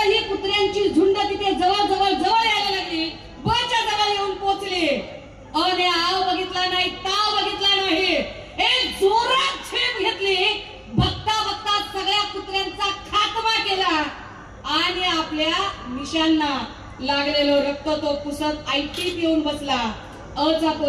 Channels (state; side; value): identical; both; correlation 1.00